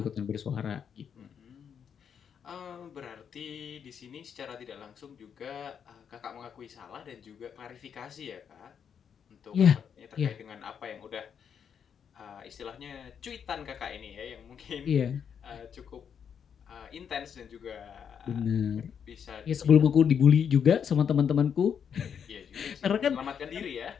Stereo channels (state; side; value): quieter; right; 7.6 dB